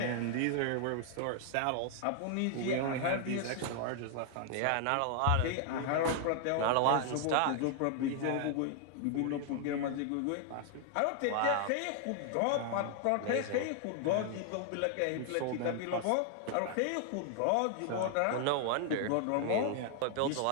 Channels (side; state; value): both; different; correlation 0.00